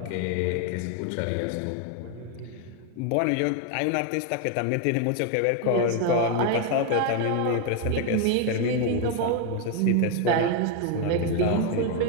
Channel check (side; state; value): both; different; correlation 0.01